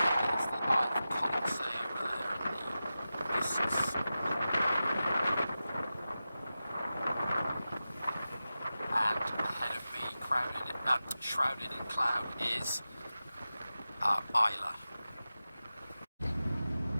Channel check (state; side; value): inverted; both; correlation -0.94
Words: Shrouded in cloud is Islay.